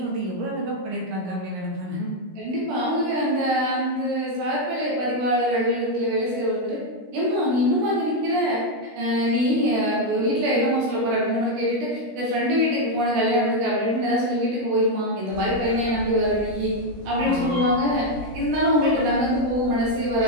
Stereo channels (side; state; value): left; late; 17 ms